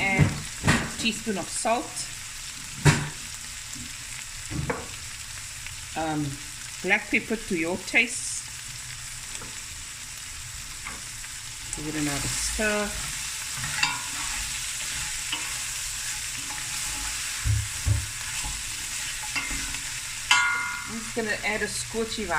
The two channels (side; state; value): both; identical; correlation 1.00